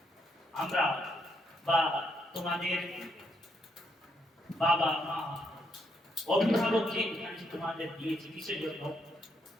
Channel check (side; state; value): both; normal; correlation 0.76